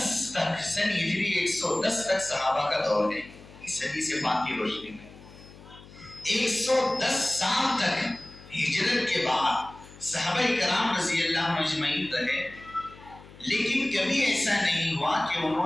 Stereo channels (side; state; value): left; noise; hum, 20 dB below the sound